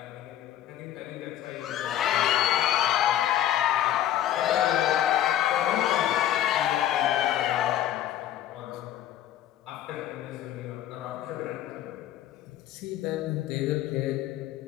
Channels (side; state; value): right; quieter; 11.9 dB